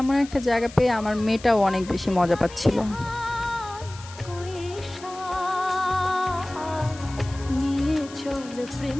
এমন একটা জায়গা পেয়ে আমার মেয়েটাও অনেক বেশি মজা পাচ্ছিল। কৈশা নিয়ে চল প্রেম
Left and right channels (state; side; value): noise; left; hiss, 18 dB below the sound